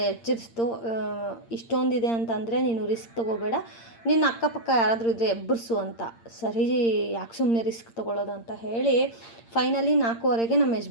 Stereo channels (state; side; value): late; right; 8.7 ms